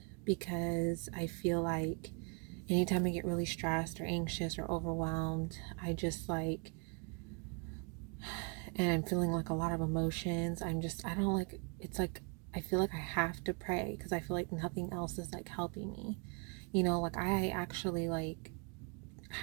because I feel like anytime I get really stressed or anxious or overwhelmed, and I'm feeling like a lot of emotions. I don't like, it's like, I feel like I have to pray because I feel like nothing else is like helping me. Like I actually like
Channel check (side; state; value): left; quieter; 33.5 dB